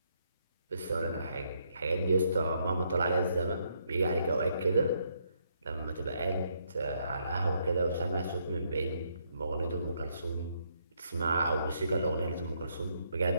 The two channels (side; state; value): both; inverted; correlation -0.74